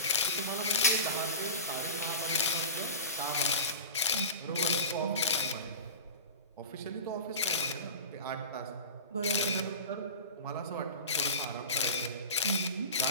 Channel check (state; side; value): inverted; both; correlation -0.30